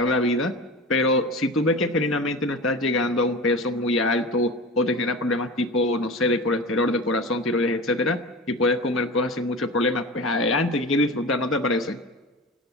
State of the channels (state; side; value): normal; both; correlation 0.31